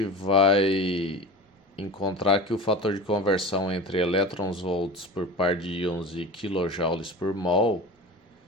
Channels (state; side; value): normal; both; correlation 0.33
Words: vai encontrar que o fator de conversão entre elétrons-volts por par de íons e kilojoules por mol